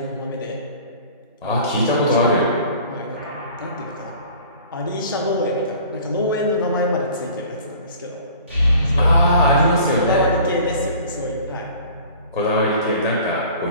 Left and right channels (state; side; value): inverted; both; correlation -0.47